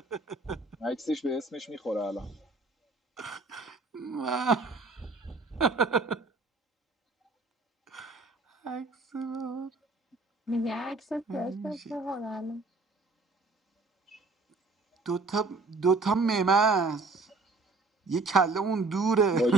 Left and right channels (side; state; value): left; quieter; 3.6 dB